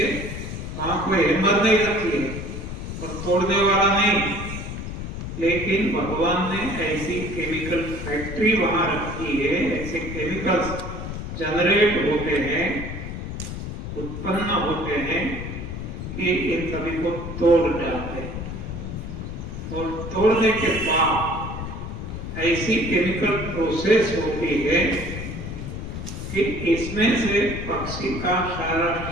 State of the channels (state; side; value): noise; left; rumble, 7 dB below the sound